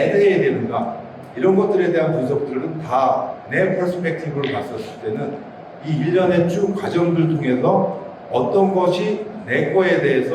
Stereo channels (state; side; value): identical; both; correlation 1.00